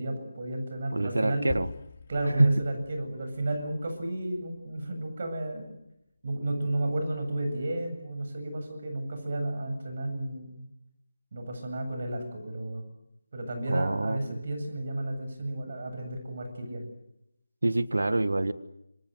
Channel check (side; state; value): both; inverted; correlation -0.96